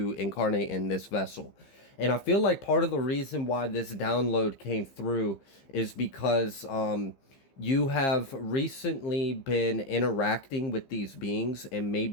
incarnate in this vessel. And I feel like part of the reason why this download came through is because you have recently been interacting with these beings and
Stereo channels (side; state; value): right; late; 15 ms